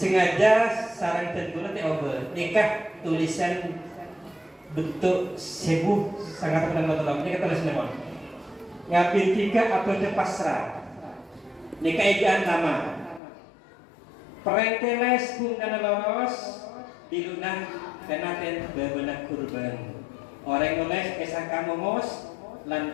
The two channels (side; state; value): right; drops out; at 13.2 s